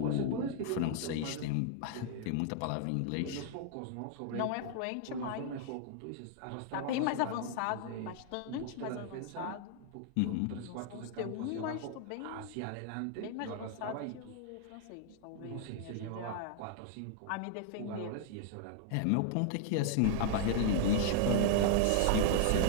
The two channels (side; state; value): both; different; correlation -0.01